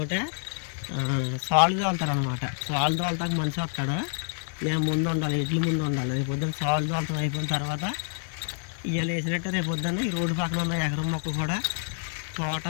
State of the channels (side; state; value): right; silent; 60 dB below the other